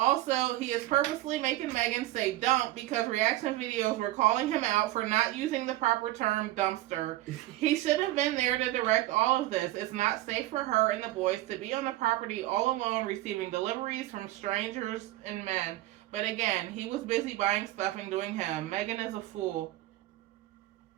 he is purposely making Megan say dump because reaction videos were calling him out for not using the proper term dumpster. He should have been there to direct all of this. It's not safe for her and the boys to be on the property all alone receiving deliveries from strangers and men. But again, he was busy buying stuff and doing him. Megan is a fool.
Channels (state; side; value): quieter; left; 16.3 dB